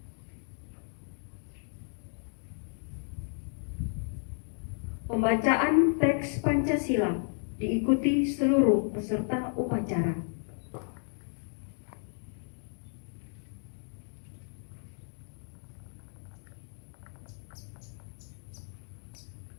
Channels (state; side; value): silent; right; 56 dB below the other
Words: Pembacaan teks Pancasila diikuti seluruh peserta upacara.